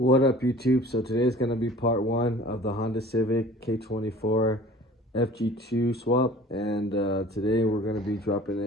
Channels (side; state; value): both; normal; correlation 0.46